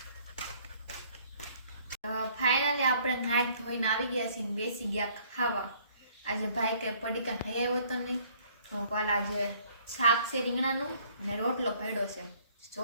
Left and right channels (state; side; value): inverted; both; correlation -0.60